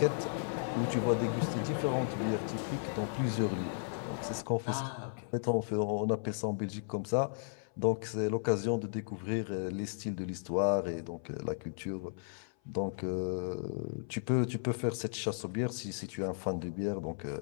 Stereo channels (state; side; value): silent; right; 55 dB below the other